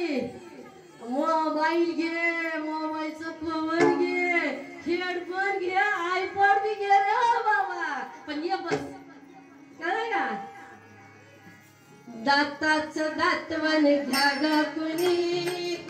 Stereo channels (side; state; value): both; identical; correlation 1.00